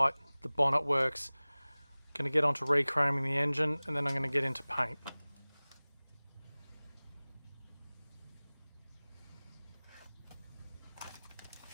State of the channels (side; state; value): both; inverted; correlation -1.00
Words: The bonnet works. Going to get onto rechroming the engine, and then I'm going to get into paint.